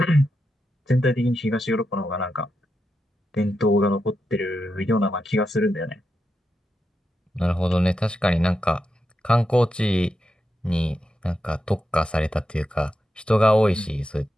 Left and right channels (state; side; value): normal; both; correlation 0.87